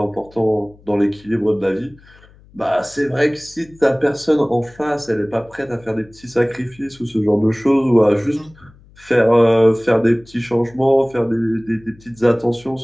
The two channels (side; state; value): left; noise; hum, 26 dB below the sound